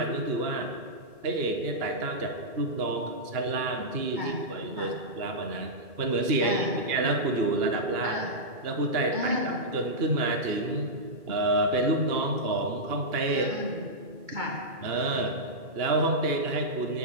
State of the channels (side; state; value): left; late; 2.8 ms